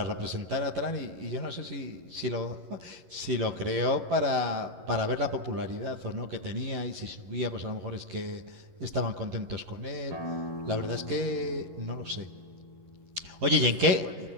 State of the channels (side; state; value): left; late; 11 ms